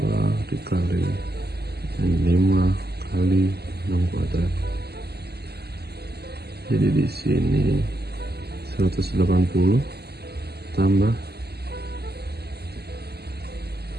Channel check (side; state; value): left; late; 0.47 ms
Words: dikali 5 kali 6 kuadrat. Jadi di sini 180 tambah